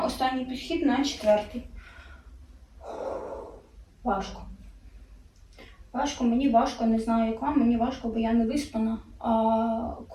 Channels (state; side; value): identical; both; correlation 1.00